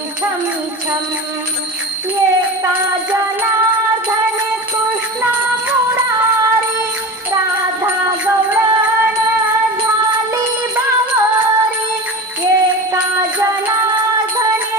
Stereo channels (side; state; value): both; normal; correlation 0.29